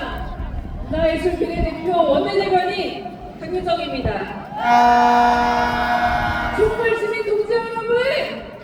문화예술 비례대표 원내대변인 강효정입니다. 촛불 시민 동지 여러분,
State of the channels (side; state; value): both; identical; correlation 1.00